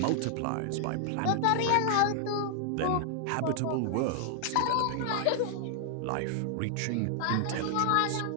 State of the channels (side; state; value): both; different; correlation 0.00